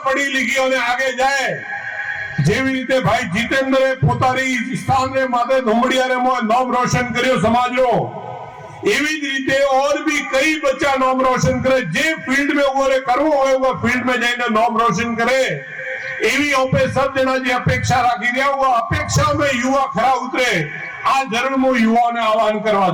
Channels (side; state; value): both; identical; correlation 1.00